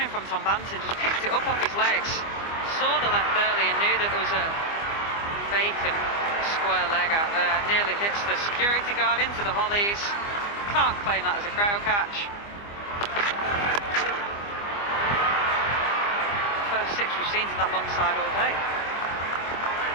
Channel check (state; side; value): late; right; 25 ms